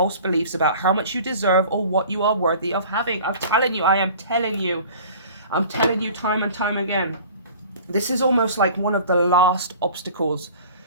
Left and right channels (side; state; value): both; inverted; correlation -0.44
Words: beliefs about how much you deserve or what you are worthy of having. I'm telling you, I am telling you. I'm telling you time and time again, this is almost like one of the last obstacles